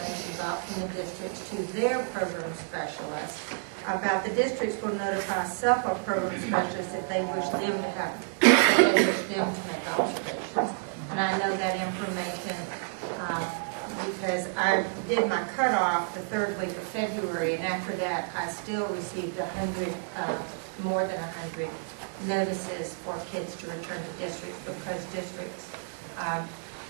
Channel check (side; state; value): left; silent; 58 dB below the other